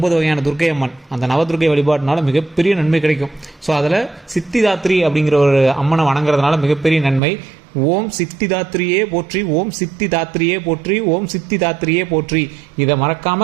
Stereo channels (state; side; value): drops out; left; at 7.2 s